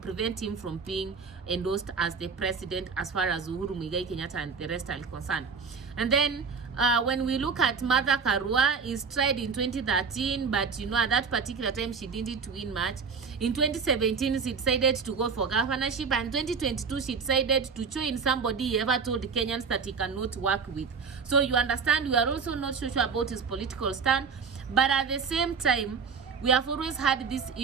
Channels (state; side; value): quieter; left; 5.5 dB